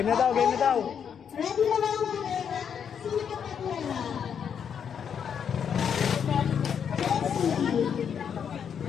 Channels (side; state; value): right; quieter; 7.7 dB